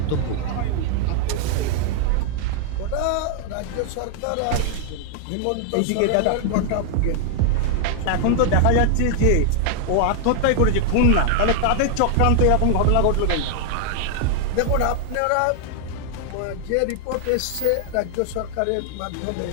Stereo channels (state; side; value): different; both; correlation 0.00